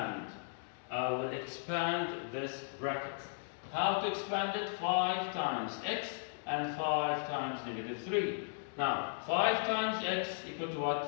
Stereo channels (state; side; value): silent; right; digital silence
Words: I will expand this bracket. How to expand it? 5 times x and 5 times negative 3. Now, 5 times x equal to